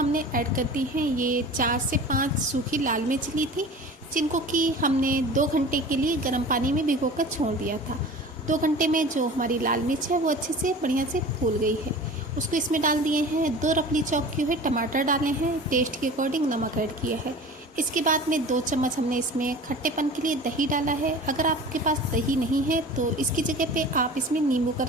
ऐड कर दी हैं ये 4 से 5 सूखी लाल मिर्च ली थी, जिनको कि हमने 2 घंटे के लिए गर्म पानी में भिगोकर छोड़ दिया था। 2 घंटे में जो हमारी लाल मिर्च है वो अच्छे से बढ़िया से फूल गई है। उसको इसमें डाल दिए हैं। 2 रफली चॉप किए हुए टमाटर डाले हैं, टेस्ट के अकॉर्डिंग नमक ऐड किया है। इसके बाद में 2 चम्मच हमने इसमें खट्टेपन के लिए दही डाला है। अगर आपके पास दही नहीं है तो इसकी जगह पे आप इसमें नींबू का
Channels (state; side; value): normal; both; correlation 0.39